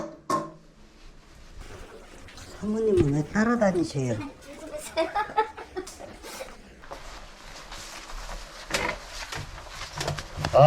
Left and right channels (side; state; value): both; identical; correlation 1.00